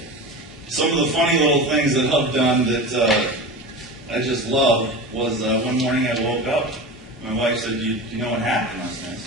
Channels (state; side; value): normal; both; correlation 0.29